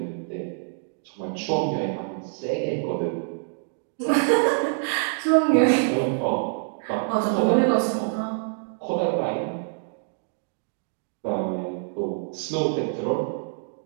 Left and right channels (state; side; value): silent; left; digital silence